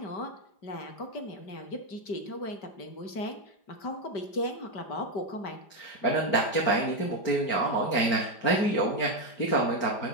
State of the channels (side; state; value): right; late; 5.0 ms